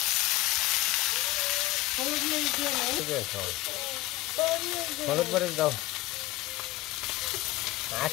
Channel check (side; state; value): right; quieter; 18.3 dB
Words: হলুদ মরিচ দাও